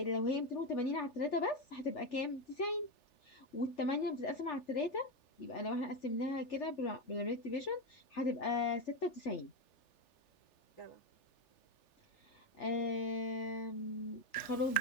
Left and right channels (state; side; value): late; right; 3.4 ms